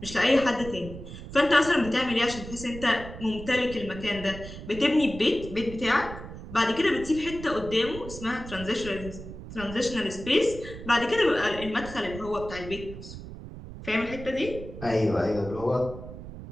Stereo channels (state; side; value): noise; right; rumble, 12 dB below the sound